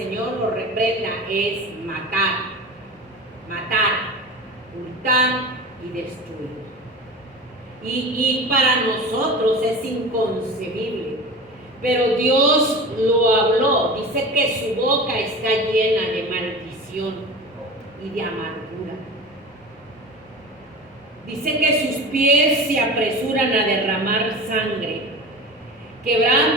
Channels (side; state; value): both; normal; correlation 0.32